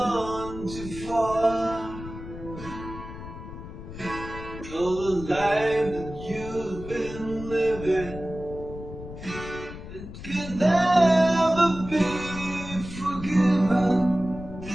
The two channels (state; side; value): noise; left; rumble, 12 dB below the sound